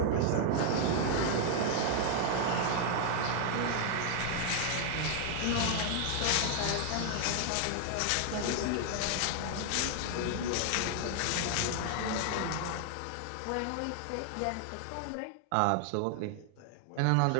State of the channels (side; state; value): both; different; correlation 0.00